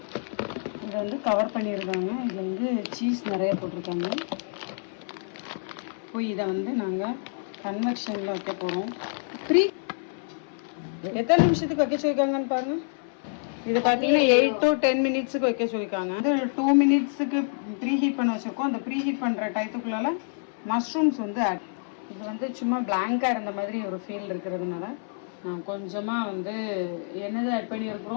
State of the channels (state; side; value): silent; right; 60 dB below the other